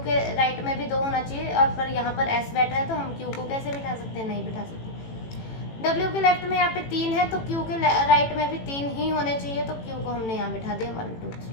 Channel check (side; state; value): right; late; 18 ms